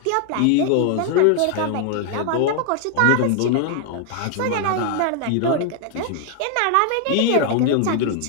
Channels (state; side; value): different; both; correlation 0.00